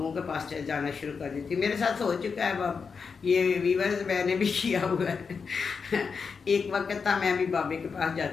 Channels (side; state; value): right; quieter; 5.5 dB